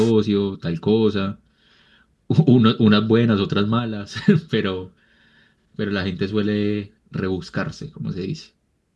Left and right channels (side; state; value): both; identical; correlation 1.00